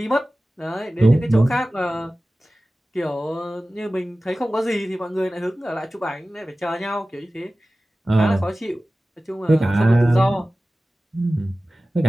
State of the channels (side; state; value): both; normal; correlation 0.96